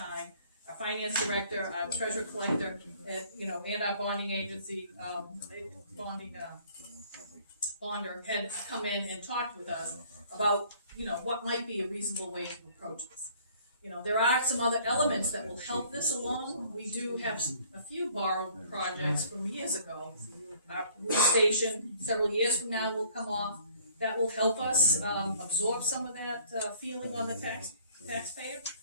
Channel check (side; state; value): both; inverted; correlation -0.56